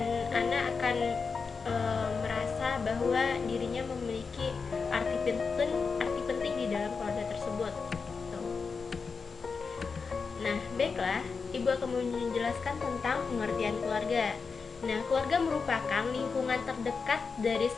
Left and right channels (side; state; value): right; quieter; 5.1 dB